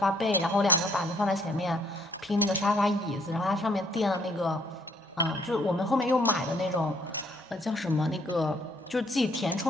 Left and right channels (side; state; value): both; normal; correlation 0.66